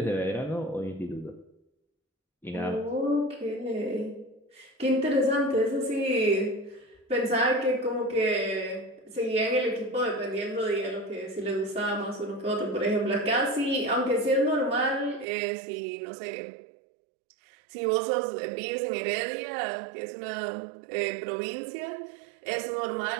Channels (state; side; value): drops out; left; at 15.2 s